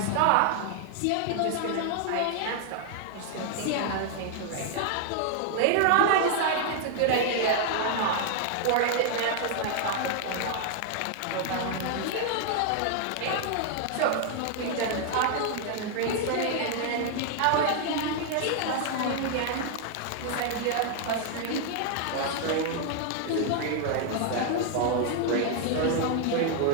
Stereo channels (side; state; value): both; different; correlation 0.00